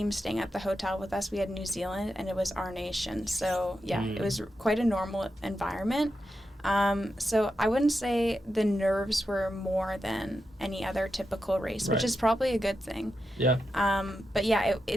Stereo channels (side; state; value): both; normal; correlation 0.88